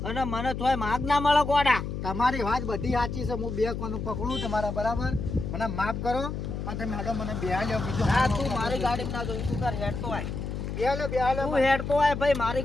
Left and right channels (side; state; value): left; noise; hum, 5 dB below the sound